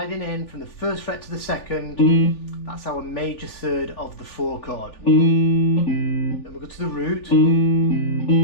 in from the 1st fret to the 2nd. That's our major 3rd of the 4 chord. Then we'll go to the root,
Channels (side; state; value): right; late; 3.4 ms